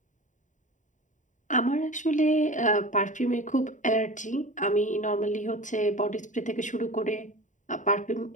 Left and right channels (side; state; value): right; late; 0.36 ms